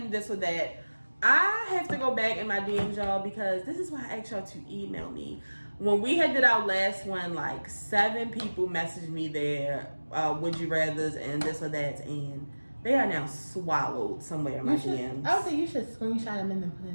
this or that. I have to go back in my DMs, y'all, because this is why I asked y'all to email me. When we had did our last one, like 7 people messaged me their would you rathers and this or that, and they are now swallowed somewhere in my DMs. I would say you should screenshot them and then put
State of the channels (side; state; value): both; inverted; correlation -1.00